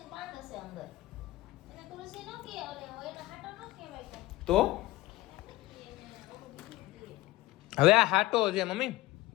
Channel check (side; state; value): right; quieter; 18.3 dB